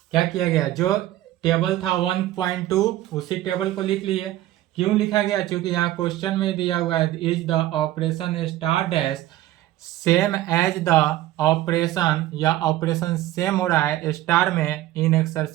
क्या किया गया, जो टेबल था 1.2 उसी टेबल को लिख लिए। क्यों लिखा गया, क्योंकि यहाँ क्वेश्चन में दिया हुआ है is the operation star dash same as the operation, या ऑपरेशन सेम हो रहा है स्टार में इन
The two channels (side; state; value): left; quieter; 14.8 dB